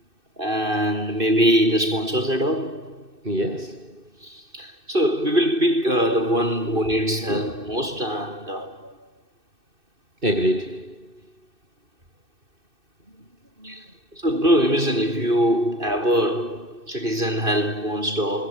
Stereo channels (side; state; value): left; late; 2.6 ms